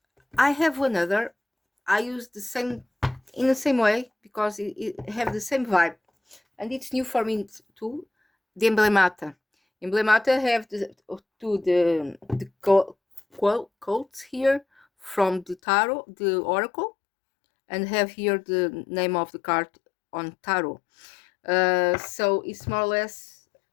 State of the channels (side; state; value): right; drops out; at 15.6 s